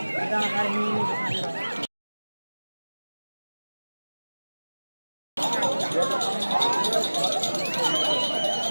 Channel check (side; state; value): both; inverted; correlation -1.00